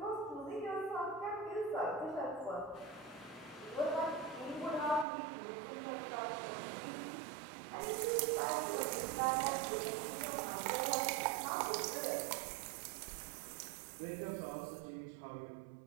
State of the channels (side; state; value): left; drops out; at 5.1 s